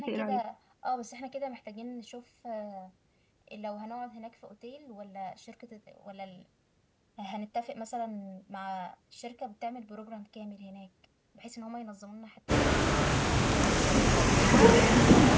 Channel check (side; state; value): both; identical; correlation 1.00